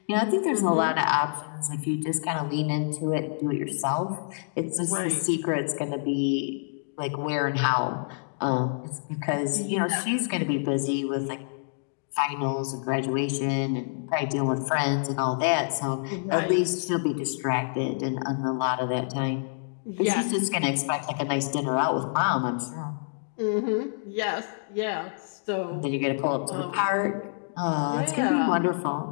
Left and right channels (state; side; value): silent; right; digital silence